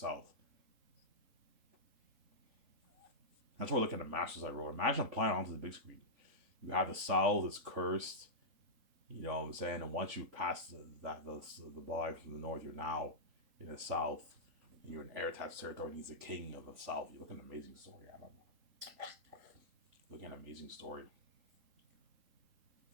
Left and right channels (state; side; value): late; left; 3.8 ms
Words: That's why I look at the matches I wrote. Imagine applying onto the big screen. You have the South is cursed. You know what I'm saying? And once you pass the line from the north, you're now in the South. And you're in Eritad's territory. And he's the king of the South. You look at an amazing story, Adam. Look at an amazing story.